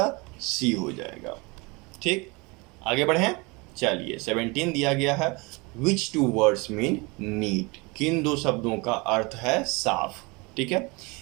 सी हो जाएगा। ठीक, आगे बढ़ें। चलिए 17 दिया गया है, विच टू वर्ड्स मीन नीट। किन दो शब्दों का अर्थ है साफ। ठीक है,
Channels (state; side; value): quieter; left; 26.8 dB